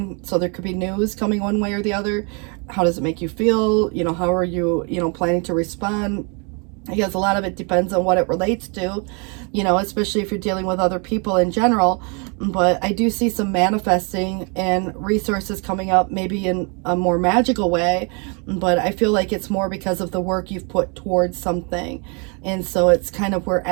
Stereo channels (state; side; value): quieter; left; 34.5 dB